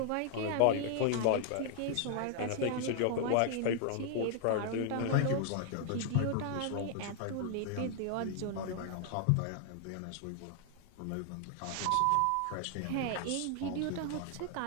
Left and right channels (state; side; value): different; both; correlation 0.00